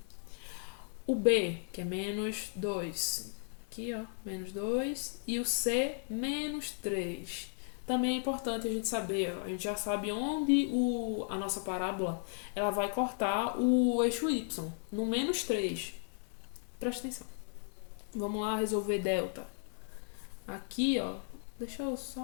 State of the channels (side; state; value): right; silent; 54 dB below the other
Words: O B, que é menos 2. Aqui, ó, menos 2. E o C, menos 3. Também é importante a gente saber, ó, a gente já sabe onde a nossa parábola ela vai cortar o eixo Y, no menos 3. Presta atenção. Vamos lá resolver delta. Aqui, ó, deixa eu